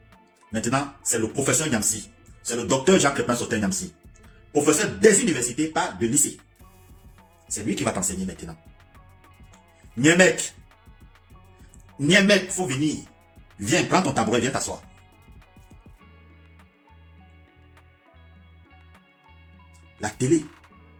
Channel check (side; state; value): both; identical; correlation 1.00